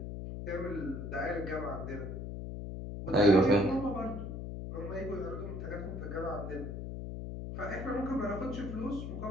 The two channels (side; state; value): left; noise; hum, 6 dB below the sound